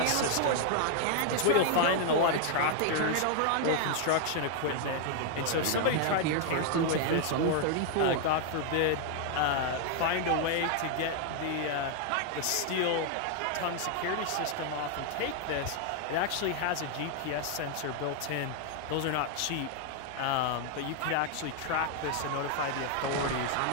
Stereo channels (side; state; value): both; different; correlation 0.00